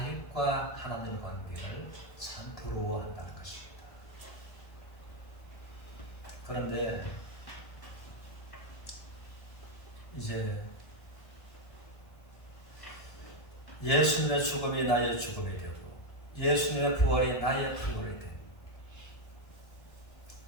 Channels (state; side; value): late; right; 1.7 ms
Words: 하나님의 관계를 참 부러워한다는 것입니다. 그런데 이제 예수님의 죽음이 나의 죽음이 되고 예수님의 부활이 나의 부활이 되고